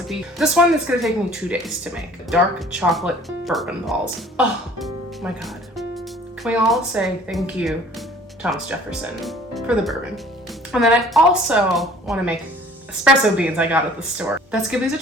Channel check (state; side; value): normal; both; correlation 0.52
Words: This one is gonna take me 2 days to make. Dark chocolate bourbon balls. Oh my god. Can we all say thank you, Thomas Jefferson, for the bourbon? And then I also want to make espresso beans I got at the store. Let's give these a